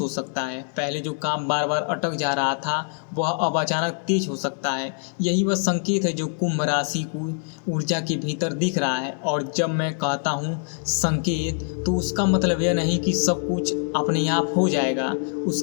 सकता है। पहले जो काम बार बार अटक जा रहा था वह अब अचानक तेज हो सकता है। यही वह संकेत है जो कुंभ राशि को ऊर्जा के भीतर दिख रहा है। और जब मैं कहता हूँ संकेत तो उसका मतलब यह नहीं कि सब कुछ अपने आप हो जाएगा।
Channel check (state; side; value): silent; right; 60 dB below the other